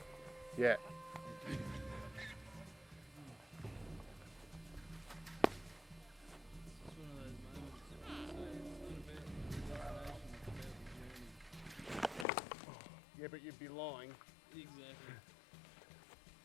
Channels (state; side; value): drops out; right; at 12.2 s